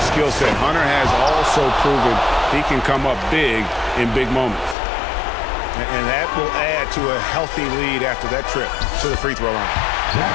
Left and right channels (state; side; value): drops out; right; at 4.8 s